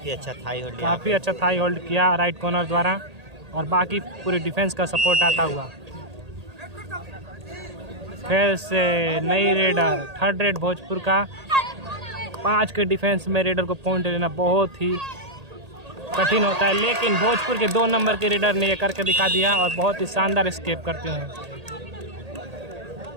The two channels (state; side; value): late; left; 1.8 ms